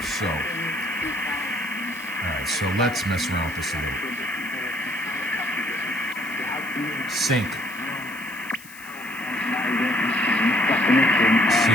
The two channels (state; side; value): noise; left; hiss, 19 dB below the sound